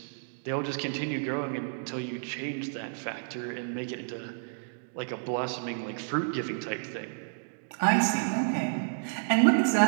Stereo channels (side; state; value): left; silent; digital silence